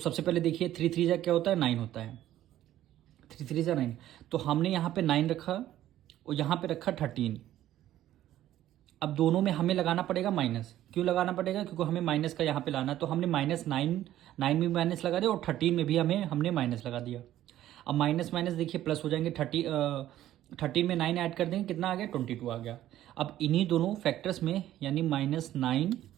पहले देखिए 3 3 क्या होता है, 9 होता है, 3 3 9। तो हमने यहाँ पे 9 रखा और यहाँ पे रखा 13। अब दोनों में हमें लगाना पड़ेगा माइनस। क्यों लगाना पड़ेगा, क्योंकि हमें माइनस का यहाँ पे लाना है। तो हमने -9 में माइनस लगा दिया और 13 में भी हमने माइनस लगा दिया। अब माइनस माइनस देखिए प्लस हो जाएंगे, 13 में 9 ऐड कर देंगे, कितना आ गया, 22 आ गया। अब इन्हीं दोनों फैक्टर्स में यानी -9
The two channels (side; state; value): left; quieter; 13.1 dB